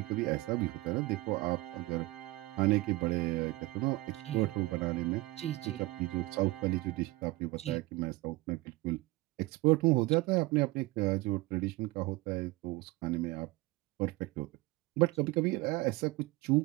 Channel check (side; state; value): left; quieter; 20.8 dB